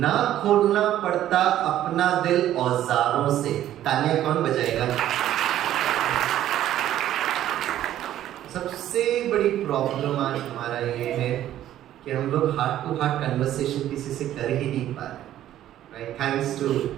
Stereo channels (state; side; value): quieter; left; 12.4 dB